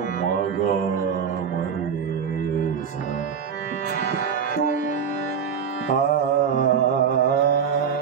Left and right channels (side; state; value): left; quieter; 7.0 dB